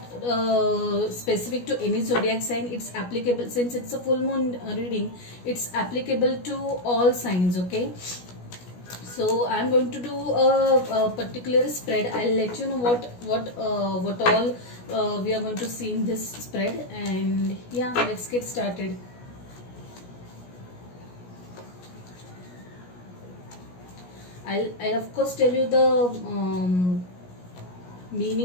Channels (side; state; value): right; late; 17 ms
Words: specific to any zodiac sign. It's applicable, since it's a full moon reading. It's applicable to all signs. Okay. So I'm going to do a particular spread. I'll let you know what all we are going to see in this spread. And yeah, let's get started. I'll of course tell you the